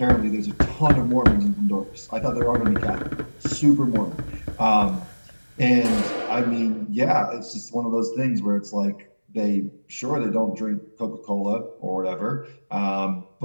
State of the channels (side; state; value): both; inverted; correlation -1.00